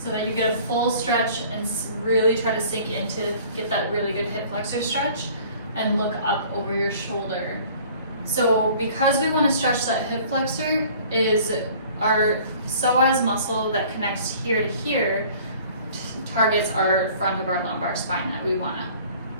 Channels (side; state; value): both; inverted; correlation -0.51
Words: that you get a full stretch and really try to sink into, get that really good hip flexor stretch, and look up over your shoulder. So because we want to stretch that hip flexor, is our psoas muscle that connects here to here targets our front of our lumbar spine that we want to